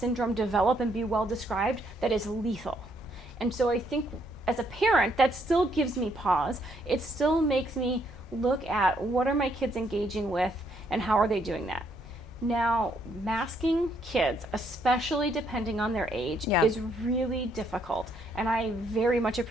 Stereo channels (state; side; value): normal; both; correlation 0.71